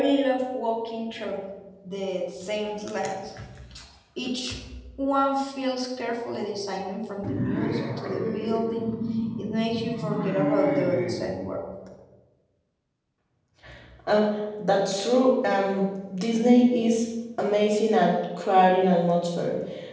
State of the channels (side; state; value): both; identical; correlation 1.00